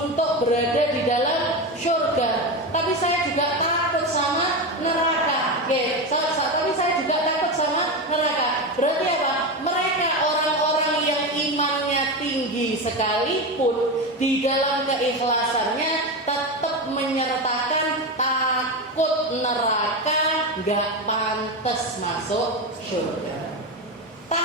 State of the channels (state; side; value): normal; both; correlation 0.17